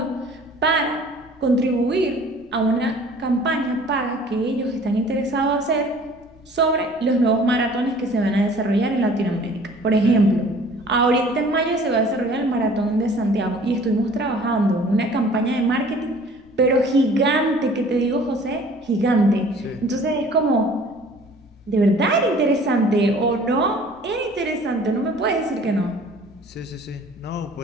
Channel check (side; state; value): left; noise; rumble, 30 dB below the sound